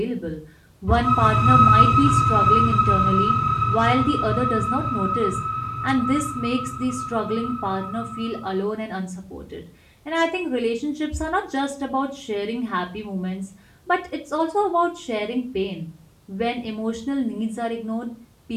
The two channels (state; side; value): identical; both; correlation 1.00